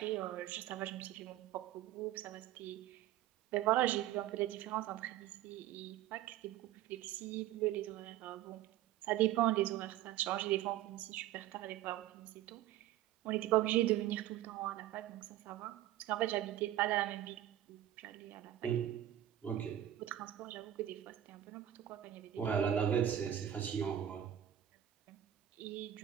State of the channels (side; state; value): left; quieter; 12.4 dB